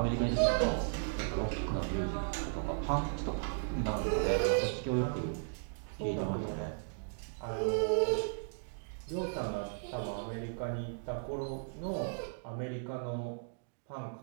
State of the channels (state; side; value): silent; left; digital silence